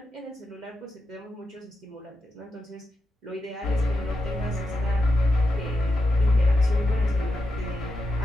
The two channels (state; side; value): normal; both; correlation 0.87